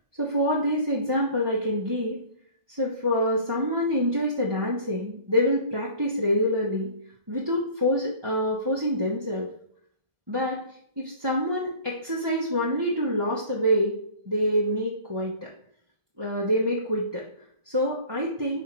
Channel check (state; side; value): late; left; 1.5 ms